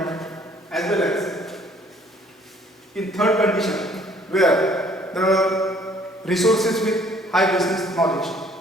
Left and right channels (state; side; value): normal; both; correlation 0.59